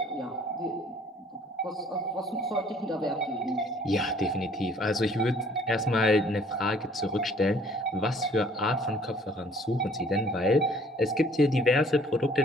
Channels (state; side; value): normal; both; correlation 0.57